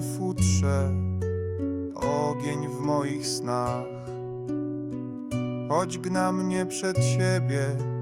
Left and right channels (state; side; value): identical; both; correlation 1.00